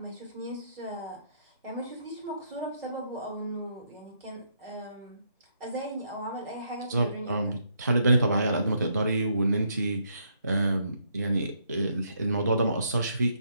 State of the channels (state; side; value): inverted; both; correlation -0.73